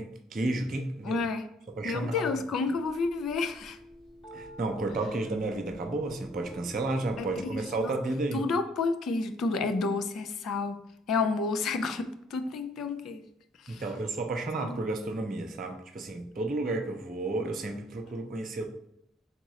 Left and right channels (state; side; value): normal; both; correlation 0.61